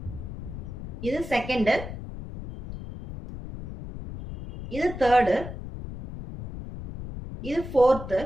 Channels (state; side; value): noise; left; rumble, 9 dB below the sound